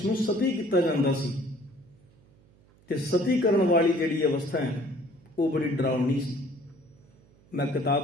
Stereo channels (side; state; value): right; noise; hum, 30 dB below the sound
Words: ਸਤੀ ਕੀਤਾ ਜਾਂਦਾ ਸੀ। ਤੇ ਸਤੀ ਕਰਨ ਵਾਲੀ ਜਿਹੜੀ ਅਵਸਥਾ ਹੈ ਉਹ ਬੜੀ ਡਰਾਉਣੀ ਸੀ। ਮੈਂ